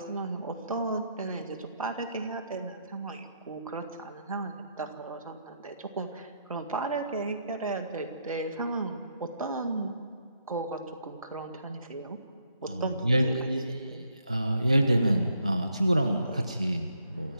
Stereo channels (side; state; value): both; inverted; correlation -0.74